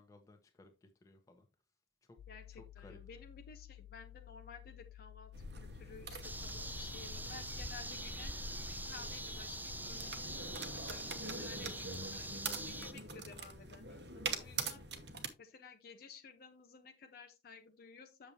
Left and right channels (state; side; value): normal; both; correlation -0.03